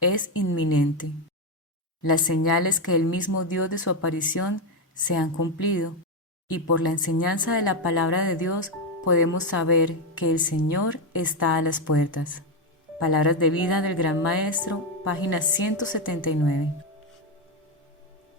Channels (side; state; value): both; normal; correlation 0.07